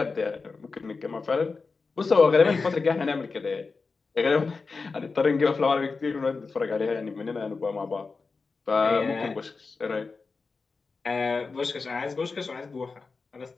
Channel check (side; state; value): right; quieter; 4.4 dB